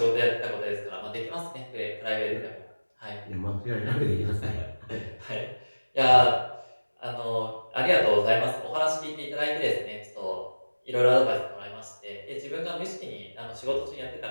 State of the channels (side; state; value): both; inverted; correlation -1.00